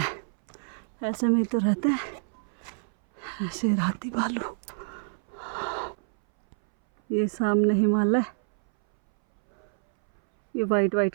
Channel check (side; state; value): left; silent; 60 dB below the other